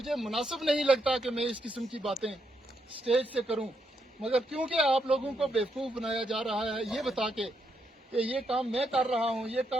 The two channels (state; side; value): normal; both; correlation 0.79